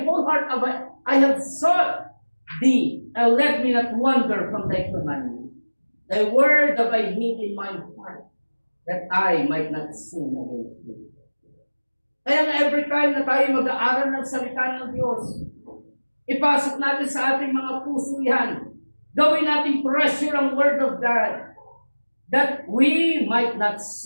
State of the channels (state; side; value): inverted; both; correlation -1.00